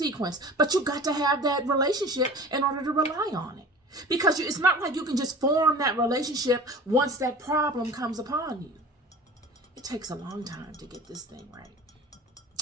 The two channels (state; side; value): normal; both; correlation 0.40